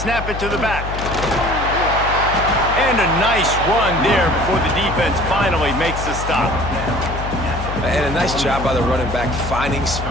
it to the back. And a nice run there before the defense finally makes the stop. And a nice job by the running back, finding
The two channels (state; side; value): noise; left; hum, 6 dB below the sound